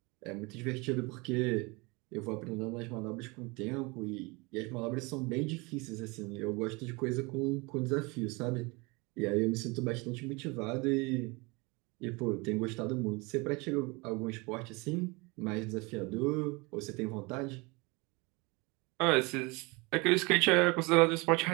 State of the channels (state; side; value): quieter; left; 26.9 dB